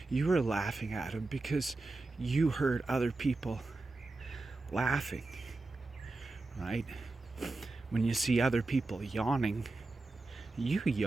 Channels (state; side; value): quieter; left; 3.3 dB